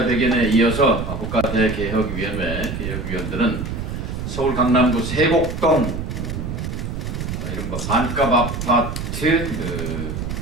이어서 국가대개혁위원회 개혁위원들은 서울 강남구 세곡동 이른바 반값 아파트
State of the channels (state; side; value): noise; right; rumble, 5 dB below the sound